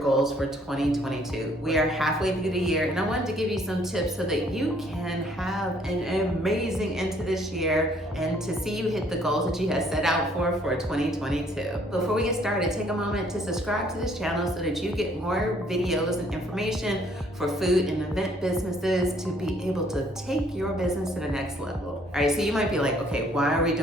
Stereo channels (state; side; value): normal; both; correlation 0.63